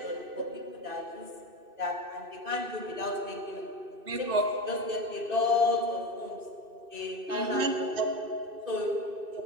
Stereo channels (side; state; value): left; late; 2.6 ms